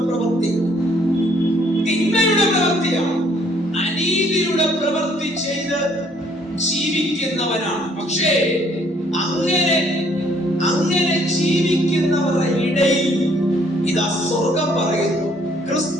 പ്രവൃത്തി, തിന്മയുടെ പ്രവൃത്തിയാണ്. അനീതിയുടെ പ്രവൃത്തി ചെയ്ത് ജീവിക്കുന്നവനാണ്. പക്ഷേ അങ്ങനെ ജീവിക്കുന്നവരുടെ ഇടയിൽ ഇതാ സ്വർഗം പറയുന്നു,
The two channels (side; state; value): both; normal; correlation 0.64